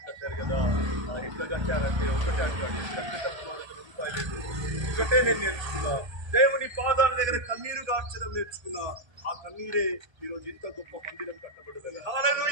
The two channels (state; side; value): late; left; 1.3 ms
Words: కట్టారు కదా, ఎట్లా కట్టారంటే ఒకటే అంటాడు, కట్టేటప్పుడు ₹1 లేదు. ఒకటే నేను నేర్చుకున్నా, దేవుని పాదాల దగ్గర కన్నీరు గార్చడం నేర్చుకున్నా. ఆ కన్నీరే ఈరోజు ఇంత గొప్ప మందిరం కట్టబడదు.